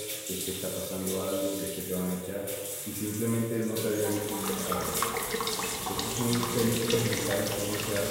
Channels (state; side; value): identical; both; correlation 1.00